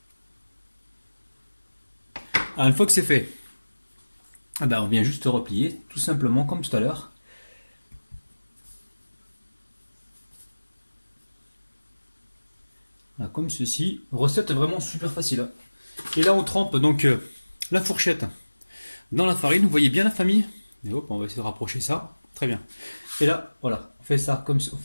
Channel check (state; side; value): inverted; both; correlation -1.00